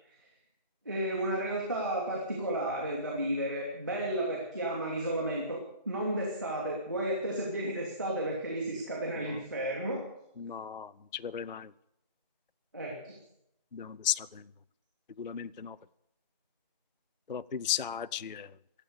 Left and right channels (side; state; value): both; inverted; correlation -0.33